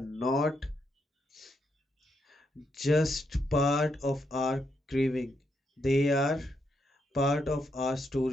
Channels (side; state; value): both; normal; correlation 0.80